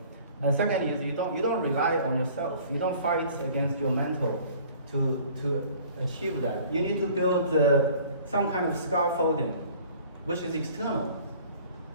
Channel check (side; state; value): both; inverted; correlation -0.51